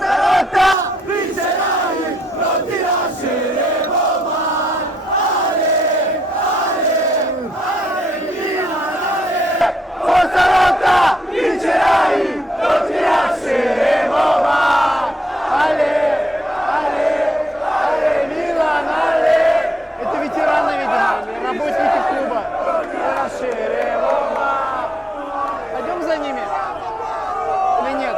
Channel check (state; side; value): normal; both; correlation 0.76